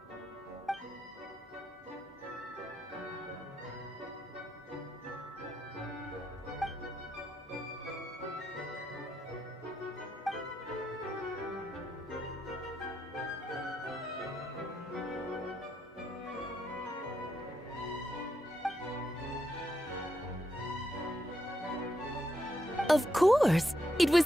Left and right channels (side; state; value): both; normal; correlation 0.81